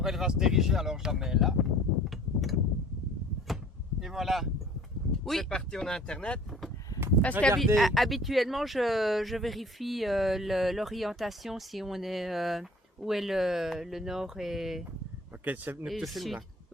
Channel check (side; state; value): both; normal; correlation 0.49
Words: elle va se diriger, alors je la mets là. Et voilà. Oui. C'est parti, on a internet. Parce Regardez. qu'habituellement, je vérifie l'orientation si on est où est le nord et Ok, c'est nous le te filme sud. là.